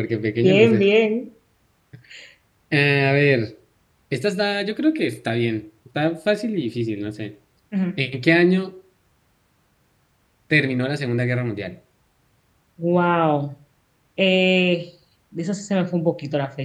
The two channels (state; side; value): identical; both; correlation 1.00